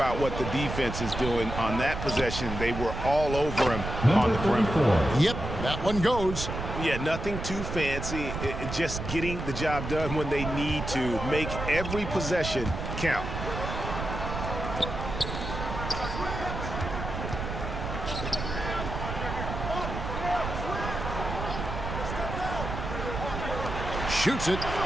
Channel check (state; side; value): noise; right; rumble, 5 dB below the sound